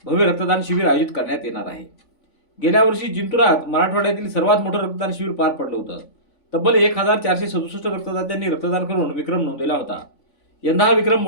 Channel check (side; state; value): right; late; 3.5 ms